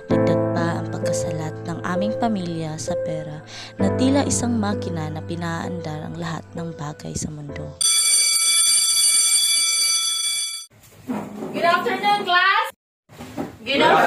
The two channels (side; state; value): both; identical; correlation 1.00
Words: dagdag pa ang pagkasalat ng aming pamilya sa pera na tila isang makina na pinaandar ang lahat ng bagay sa mundo. Good afternoon, class! Good